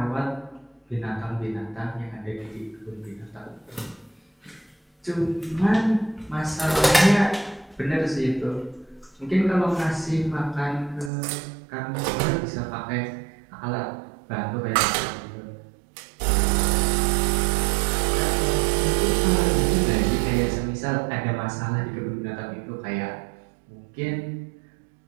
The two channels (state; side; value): drops out; left; at 11.1 s